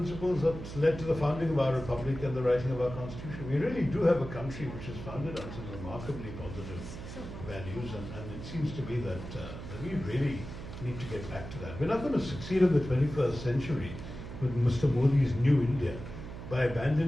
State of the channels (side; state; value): right; noise; hum, 10 dB below the sound